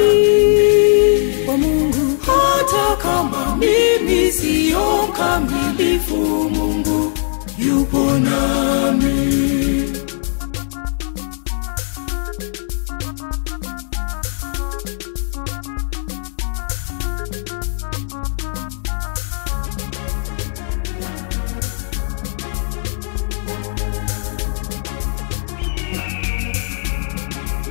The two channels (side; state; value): right; silent; digital silence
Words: kwa Mungu. Hata kama mimi sio mkamilifu, Mungu yupo nami.